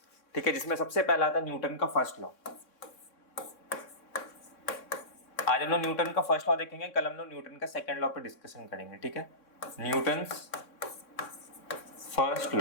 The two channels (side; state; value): right; late; 3.6 ms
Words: ठीक है, जिसमें सबसे पहला आता है न्यूटन का फर्स्ट लॉ। आज हम लोग न्यूटन का फर्स्ट लॉ देखेंगे, कल हम लोग न्यूटन का सेकंड लॉ पे डिस्कशन करेंगे। ठीक है, न्यूटन्स फर्स्ट